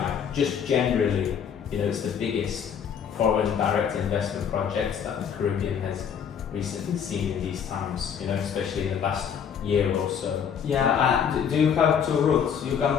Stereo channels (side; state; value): right; quieter; 7.7 dB